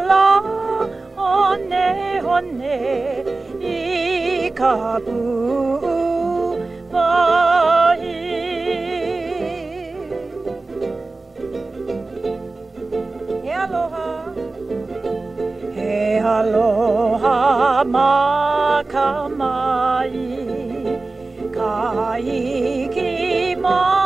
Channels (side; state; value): left; quieter; 3.4 dB